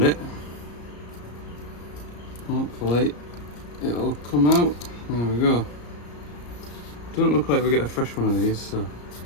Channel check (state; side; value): late; right; 34 ms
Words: it. Hopefully it'll come out. There we go. Don't look like we get a fresh one of these, so